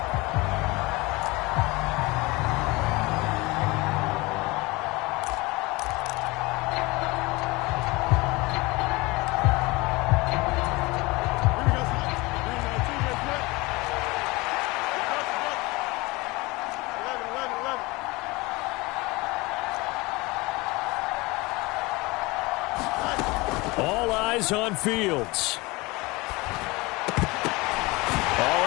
All eyes on Fields.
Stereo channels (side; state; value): right; quieter; 23.4 dB